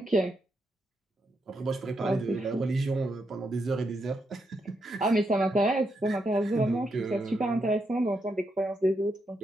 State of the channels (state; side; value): normal; both; correlation 0.81